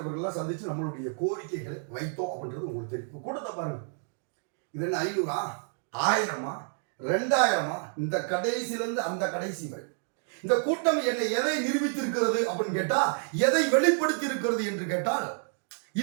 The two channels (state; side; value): silent; left; 55 dB below the other